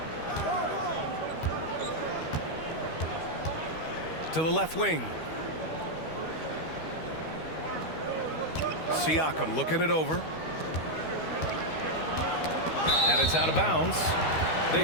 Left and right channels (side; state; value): right; late; 13 ms